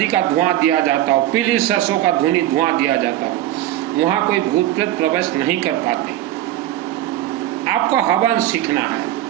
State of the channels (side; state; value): left; quieter; 13.6 dB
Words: का धुआं दिया जाता हो, पीली सरसों का धुआं दिया जाता हो, वहाँ कोई भूत प्रेत प्रवेश नहीं कर पाते। आपको हवन सीखना है।